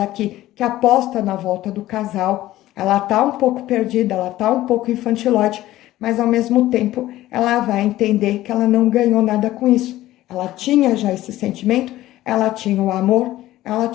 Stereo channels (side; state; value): right; quieter; 15.4 dB